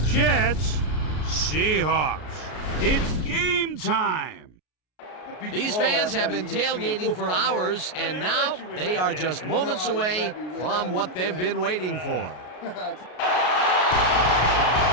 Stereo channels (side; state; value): right; late; 33 ms